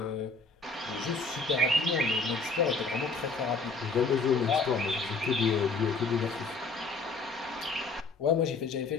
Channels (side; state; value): right; quieter; 3.9 dB